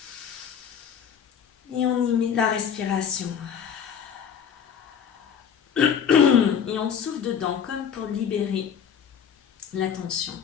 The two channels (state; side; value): quieter; right; 7.7 dB